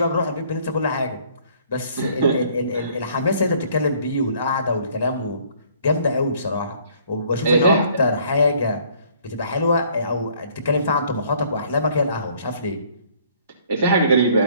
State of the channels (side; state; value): both; inverted; correlation -0.59